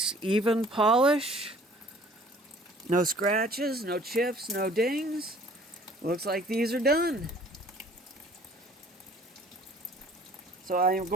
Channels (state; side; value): normal; both; correlation 0.53